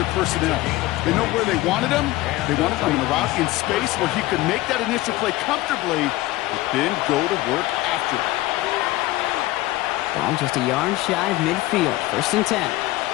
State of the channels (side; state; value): right; quieter; 18.1 dB